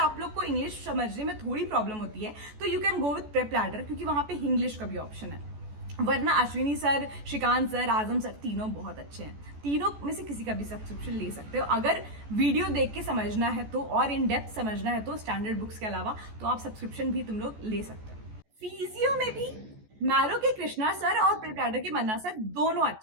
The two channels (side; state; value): left; late; 14 ms